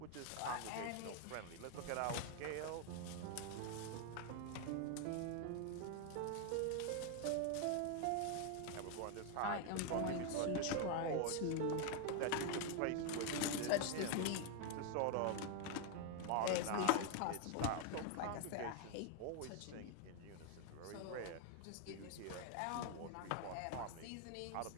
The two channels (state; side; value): different; both; correlation 0.01